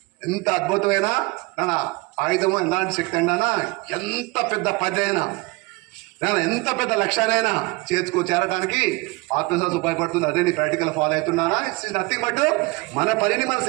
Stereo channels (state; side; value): quieter; left; 24.5 dB